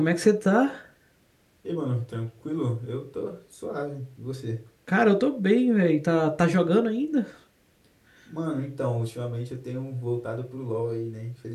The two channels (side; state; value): both; identical; correlation 1.00